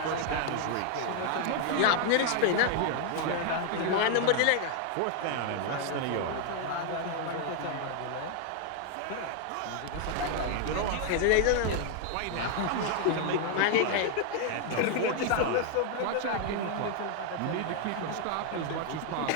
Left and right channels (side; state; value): both; different; correlation 0.00